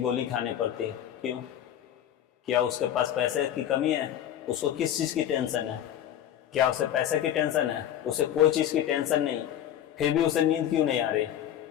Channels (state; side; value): quieter; right; 10.8 dB